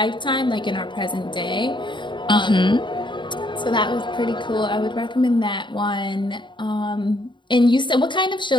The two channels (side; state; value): right; late; 0.23 ms